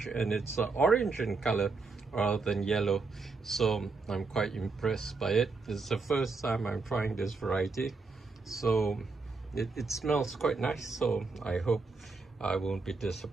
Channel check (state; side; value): quieter; left; 4.1 dB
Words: and it's orange in color rather than yellow. So I'm quite impressed by it. It's the first time I'm trying this variety. So it smells quite nice, so I hope I won't be